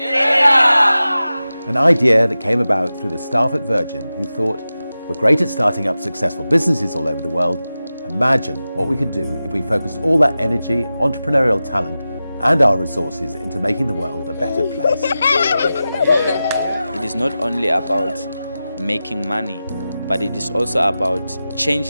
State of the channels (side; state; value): both; inverted; correlation -0.94